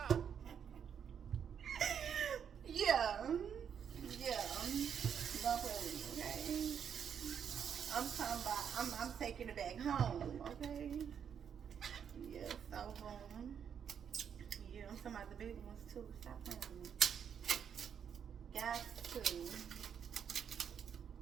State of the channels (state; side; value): quieter; left; 7.9 dB